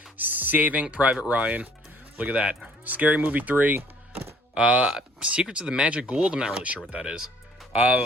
Saving Private Ryan. Look at that. Scary Movie 3. Secrets of the Magic Gould. I'm not really sure what that is.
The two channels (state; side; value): normal; both; correlation 0.57